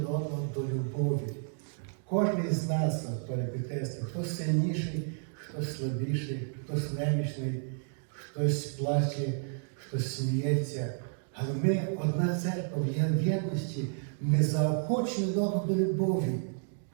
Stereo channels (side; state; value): left; silent; 57 dB below the other